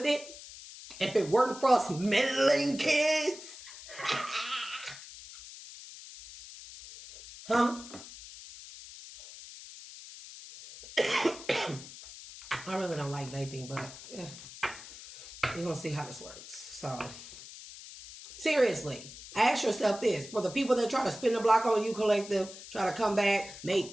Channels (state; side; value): noise; left; hiss, 15 dB below the sound